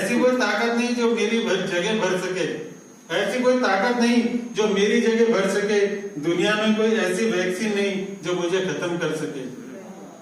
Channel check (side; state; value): both; identical; correlation 1.00